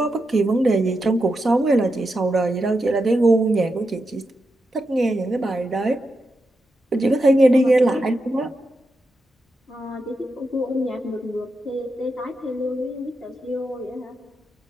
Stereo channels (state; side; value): normal; both; correlation 0.87